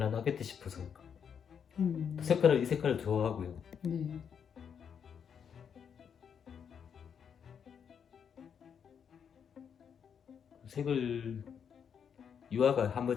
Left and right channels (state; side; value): quieter; right; 7.5 dB